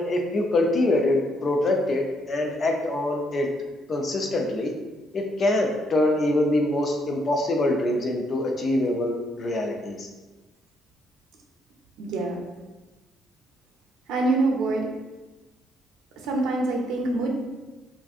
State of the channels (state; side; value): normal; both; correlation 0.73